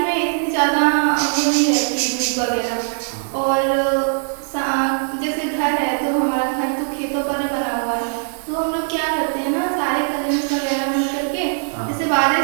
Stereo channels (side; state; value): left; silent; digital silence